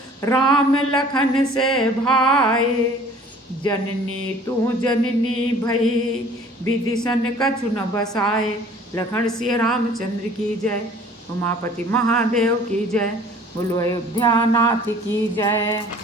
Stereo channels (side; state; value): both; normal; correlation 0.50